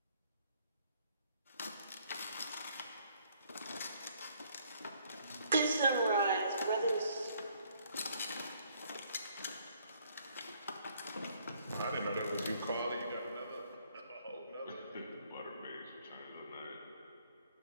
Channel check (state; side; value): inverted; both; correlation -0.65